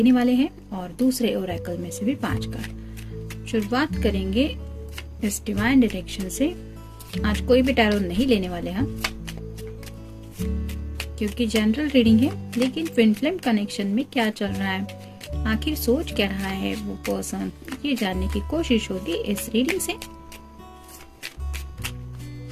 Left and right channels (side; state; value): both; identical; correlation 1.00